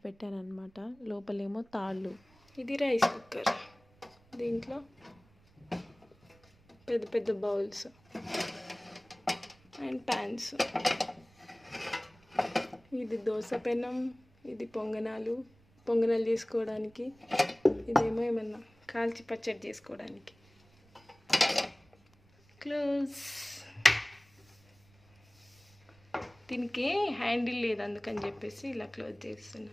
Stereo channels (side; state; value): right; noise; rumble, 30 dB below the sound